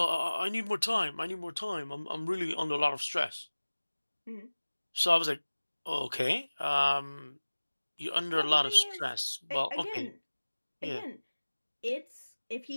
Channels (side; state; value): both; inverted; correlation -1.00